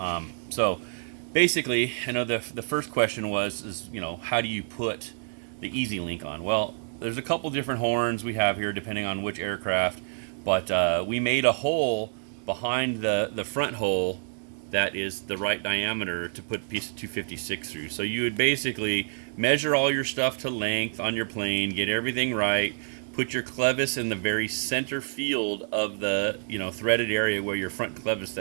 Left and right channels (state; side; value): silent; left; digital silence